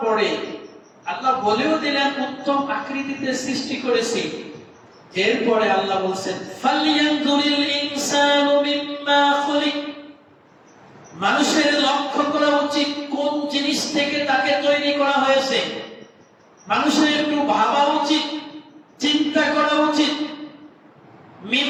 পরে আল্লাহ বলেও দিলেন উত্তম আকৃতিতে সৃষ্টি করেছি। এরপরে আল্লাহ বলছেন ফালইয়ানজুরিল ইনসানু মিম্মা খুলিক, মানুষের লক্ষ্য করা উচিত কোন জিনিস থেকে তাকে তৈরি করা হয়েছে। মানুষের একটু ভাবা উচিত, চিন্তা করা উচিত।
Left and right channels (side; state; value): both; identical; correlation 1.00